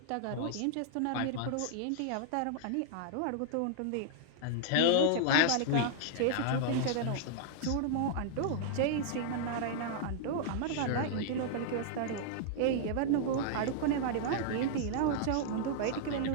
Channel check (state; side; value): different; both; correlation -0.01